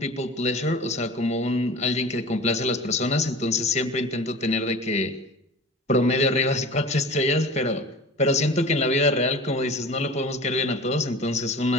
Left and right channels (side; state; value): both; normal; correlation 0.38